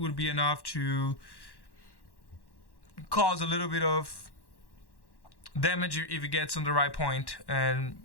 be enough to cause a little bit of damage if it gets on the right point, and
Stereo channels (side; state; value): right; late; 1.1 ms